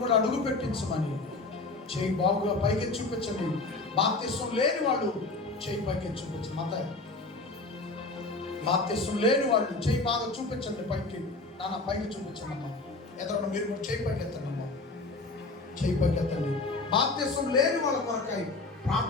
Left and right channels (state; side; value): quieter; right; 3.4 dB